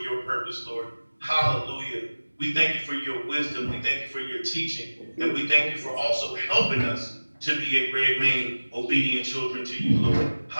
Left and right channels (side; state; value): both; inverted; correlation -1.00